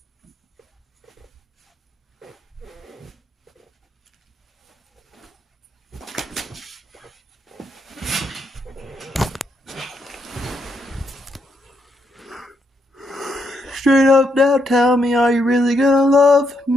Straight up now, tell me, are you really gonna love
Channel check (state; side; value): normal; both; correlation 0.78